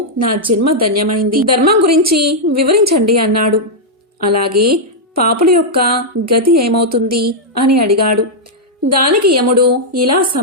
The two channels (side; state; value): both; normal; correlation -0.05